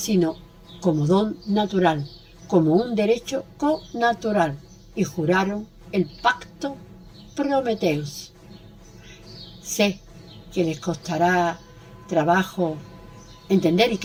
como don natural, como un derecho connatural, y juraron el pacto Prometeus. Sé que les costará trabajo entender y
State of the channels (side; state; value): both; identical; correlation 1.00